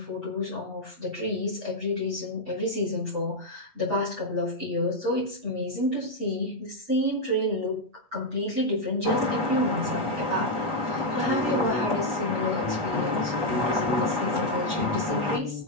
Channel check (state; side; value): late; left; 8.2 ms